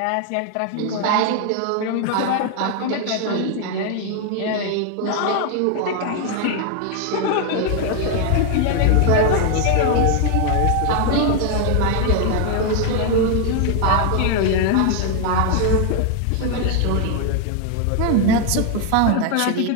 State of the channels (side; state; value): both; different; correlation 0.00